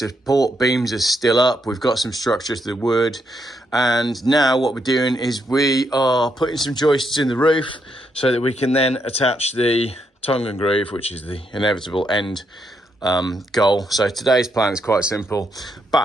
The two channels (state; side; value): normal; both; correlation 0.78